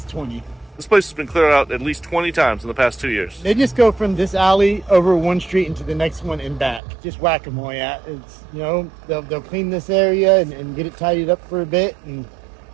20. This place has been cleared out at least 20 times in the past 2 years. They just go from this alley over one street into the next one and back. Just whack-a-mole. It's, you know, they'll clean this area and get it tidied up for a bit and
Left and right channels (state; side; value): drops out; left; at 6.8 s